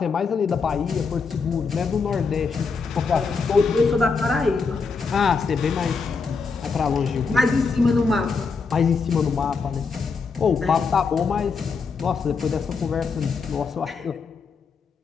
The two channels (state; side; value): quieter; right; 4.9 dB